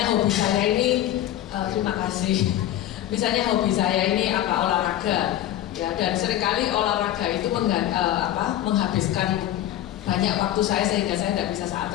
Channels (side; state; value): right; quieter; 12.7 dB